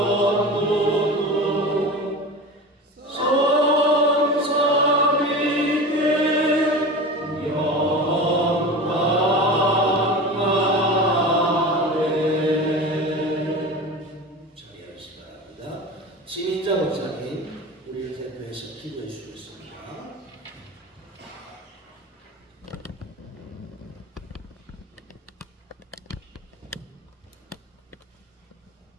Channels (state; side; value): normal; both; correlation 0.31